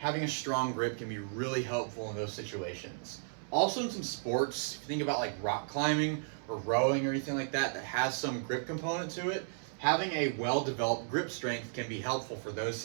a strong grip can be really helpful in those situations. Also in some sports, if you think about rock climbing or rowing or anything like that that has some grip component to it, having a well-developed grip strength can be helpful for those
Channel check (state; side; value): silent; left; 55 dB below the other